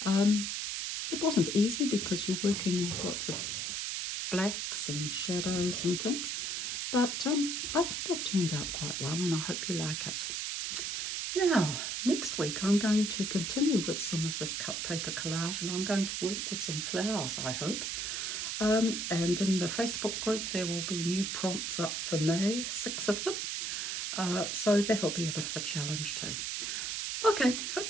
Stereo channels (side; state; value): right; noise; hiss, 2 dB below the sound